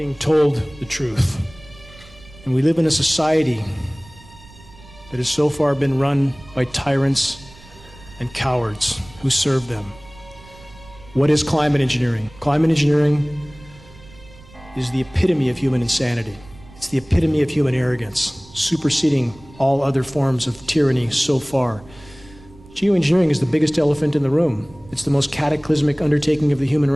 told the truth. And we live in a society that has so far been run by tyrants and cowards who serve them. What is climate engineering? Climate engineering is the epitome of human insanity. It's the epitome of human arrogance, superseding all other forms of tyranny so far. Geoengineering is the biggest elephant in the room. It's the most cataclysmic undertaking of the human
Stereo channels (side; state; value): right; noise; rumble, 22 dB below the sound